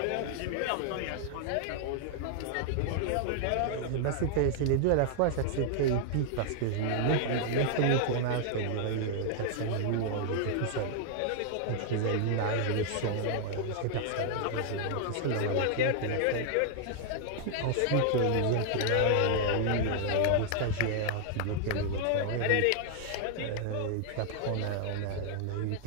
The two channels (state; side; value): different; both; correlation 0.00